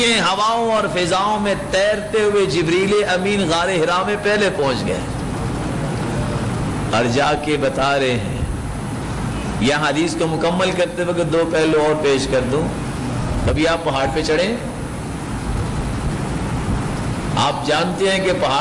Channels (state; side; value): identical; both; correlation 1.00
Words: ہے، ہواؤں اور فضاؤں میں تیرتے ہوئے جبریل امین غار حرا میں پہلے پہنچ گئے اور جا کے بتا رہے ہیں۔ یہاں حدیث کو مکمل کرتے وقت دو پہلو اور پیش کر دوں۔ کبھی آپ پہاڑ پہ چڑھیں، آپ جانتے ہیں کہ